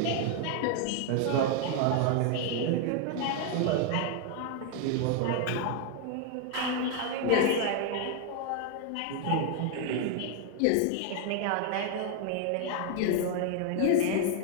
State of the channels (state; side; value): different; both; correlation 0.00